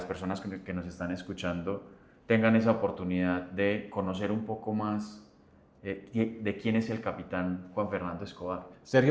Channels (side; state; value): both; identical; correlation 1.00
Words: personas que nos están escuchando tengan esa oportunidad de conocer un poco más de quién es el capitán Juan Fernando Escobar.